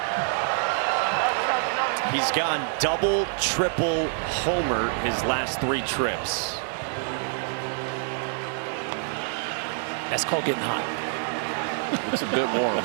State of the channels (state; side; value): silent; left; 61 dB below the other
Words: He's gone double, triple, homer his last 3 trips. That's called getting hot. It's a bit warm